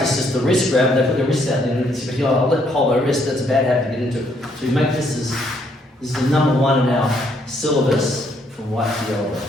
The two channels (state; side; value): normal; both; correlation 0.70